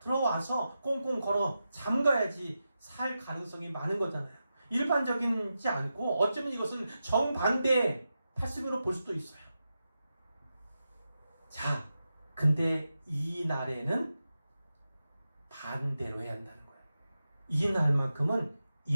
꽁꽁 걸어 잠가야지 살 가능성이 많은 거잖아요. 일반적이지 않고 어쩌면 이것은 정반대의 패스미로 볼 수도 있어요. 자, 근데 이 날에는 반대로 해야 한다는 거예요. 이 날만큼은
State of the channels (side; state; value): both; inverted; correlation -0.90